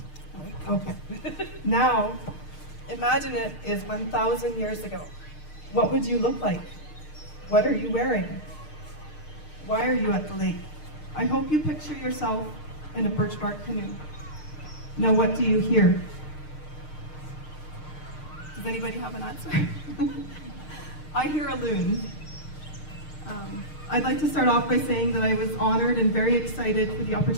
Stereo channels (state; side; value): late; right; 6.5 ms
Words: Okay, now imagine it is 1,000 years ago. What would you look like? What are you wearing? Why are you at the lake? I hope you picture yourself in a birch bark canoe. Now what do you hear? Does anybody have an answer? I hear a loon. I'd like to start off by saying that I was honored and very excited for the